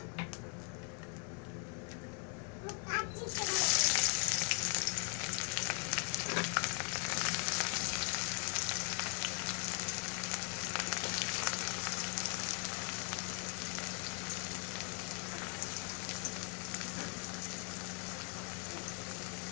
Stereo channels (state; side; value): quieter; right; 36.4 dB